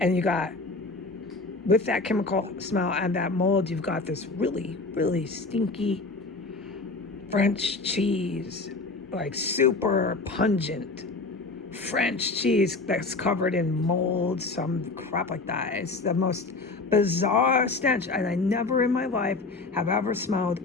you got, with that chemical smell and that mold, you've got this really, really stinky French cheese, like super pungent French cheese that's covered in mold, some crap like that. It's the most bizarre stench, and I never in my life have ever smelled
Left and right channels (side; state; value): right; quieter; 3.6 dB